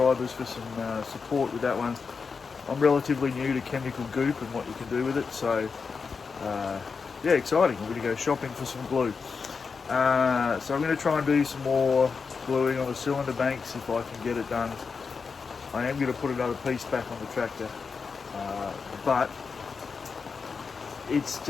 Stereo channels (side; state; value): right; quieter; 5.2 dB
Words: for some support with that one. I'm relatively new to chemical goop and what you can do with it, so yeah, exciting. I'm going to go shopping for some glue. So I'm going to try and do some more gluing on the cylinder banks if I can get it done. I am going to put another piece back on the tractor, but it